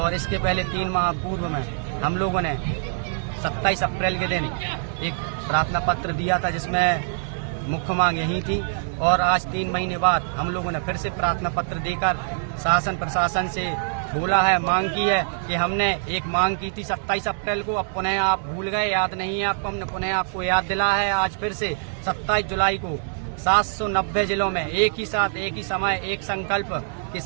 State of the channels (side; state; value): left; silent; 60 dB below the other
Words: इसके पहले 3 माह पूर्व में हम लोगों ने 27 अप्रैल के दिन एक प्रार्थना पत्र दिया था, जिसमें मुख्य मांग यही थी। और आज 3 महीने बाद हम लोगों ने फिर से प्रार्थना पत्र देकर शासन प्रशासन से बोला है, मांग की है कि हमने एक मांग की थी 27 अप्रैल को, अब पुनः आप भूल गए, याद नहीं है आपको, हमने पुनः आपको याद दिला है। आज फिर से 27 जुलाई को 790 जिलों में एक ही साथ, एक ही समय, एक संकल्प के